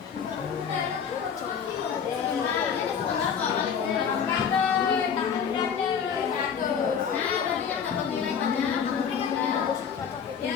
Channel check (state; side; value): quieter; right; 7.3 dB